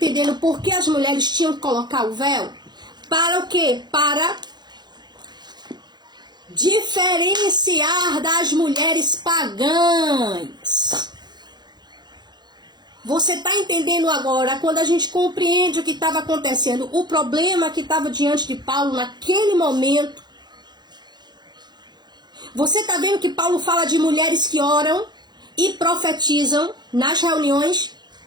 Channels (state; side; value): late; left; 0.21 ms